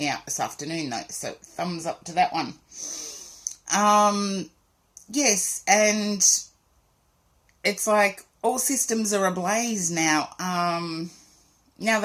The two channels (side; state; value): both; identical; correlation 1.00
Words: out this afternoon though, so thumbs up to that one. Yes, and it's like all systems are ablaze now, now